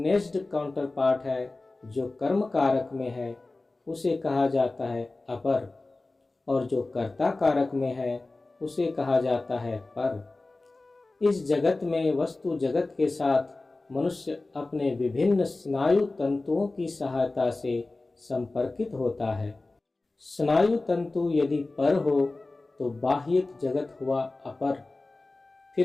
काउंटर पार्ट है, जो कर्म कारक में है, उसे कहा जाता है अपर, और जो कर्ता कारक में है, उसे कहा जाता है पर। इस जगत में वस्तु जगत के साथ मनुष्य अपने विभिन्न स्नायु तंतुओं की सहायता से संपर्कित होता है। स्नायु तंतु यदि पर हो तो बाह्यिक जगत हुआ अपर।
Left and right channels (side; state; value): right; quieter; 3.2 dB